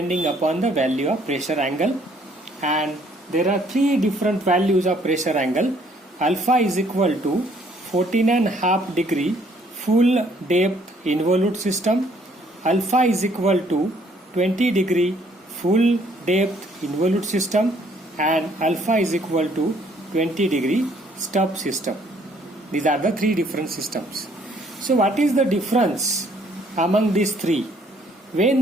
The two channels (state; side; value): normal; both; correlation 0.64